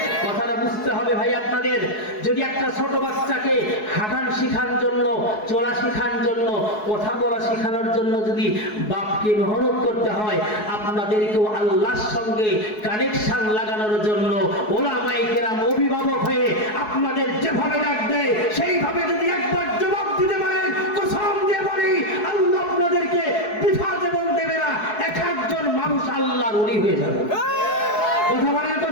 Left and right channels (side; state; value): right; late; 4.7 ms